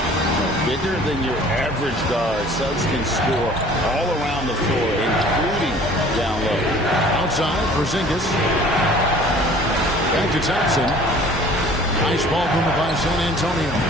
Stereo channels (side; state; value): both; normal; correlation 0.50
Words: Bigger than your average guard, Suggs can score all around the floor, including down low. Outside, Porzingis. Back to Thompson. Nice ball movement by San Antonio.